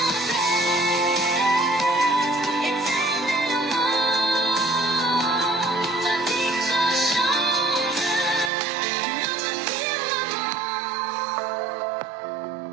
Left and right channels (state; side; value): drops out; left; at 8.5 s